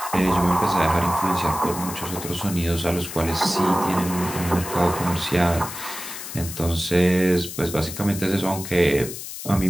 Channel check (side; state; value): left; noise; hiss, 9 dB below the sound